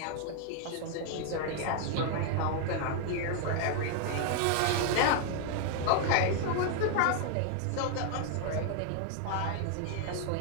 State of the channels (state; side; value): different; both; correlation 0.00